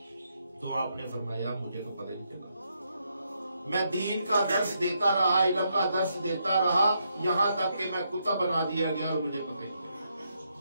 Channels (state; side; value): inverted; both; correlation -0.79